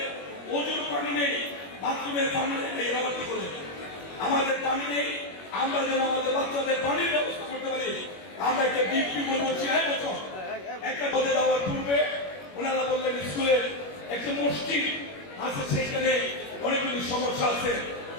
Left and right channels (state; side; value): late; right; 21 ms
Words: ওজুর পানি নেই, বাথরুমের পানি নেই, এরা কি করে আমাদের পানি নেই, আমরা যেন আমাদের বাচ্চাদের পানির ব্যবস্থা করতে পারি। আমরা একটা ডিপি বলবো 6 বছর একটা পদে দেওয়ার পূর্বে ওনারা বললেন স্কুলের একটা মসজিদ আছে, সেখানে অনেকগুলি সমস্যা আছে,